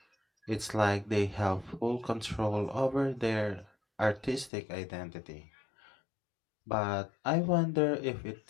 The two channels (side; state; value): right; drops out; at 4.5 s